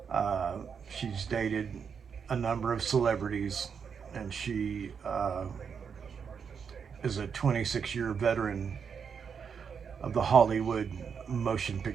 She's dated a number of celebrities, and she is a 26-year veteran of the Hollywood motion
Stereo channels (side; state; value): left; quieter; 6.6 dB